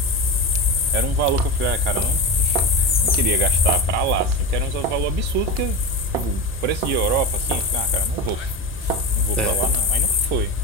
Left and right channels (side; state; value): both; normal; correlation 0.22